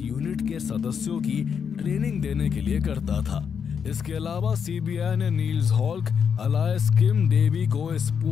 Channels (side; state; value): right; quieter; 7.0 dB